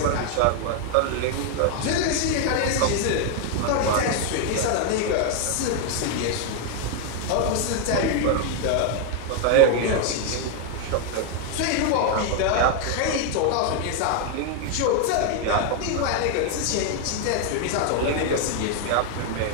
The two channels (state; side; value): different; both; correlation 0.00